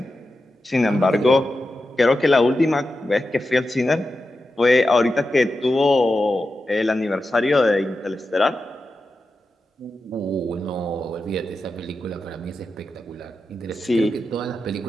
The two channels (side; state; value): both; normal; correlation 0.90